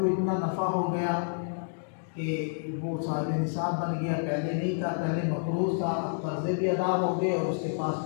اتنا نفع ہو گیا کہ وہ صاحب نصاب بن گیا، پہلے نہیں تھا، پہلے مقروض تھا، اب قرضے بھی ادا ہو گئے اور اس کے پاس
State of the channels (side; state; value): right; silent; digital silence